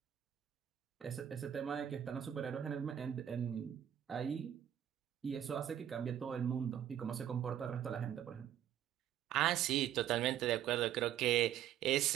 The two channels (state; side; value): quieter; left; 10.6 dB